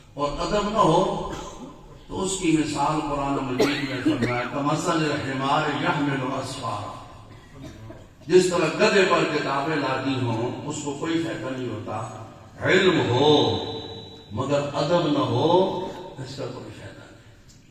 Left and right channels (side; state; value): both; identical; correlation 1.00